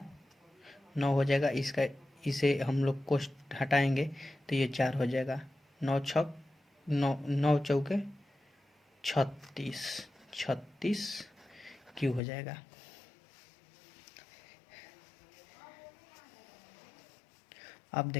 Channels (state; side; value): drops out; right; at 12.2 s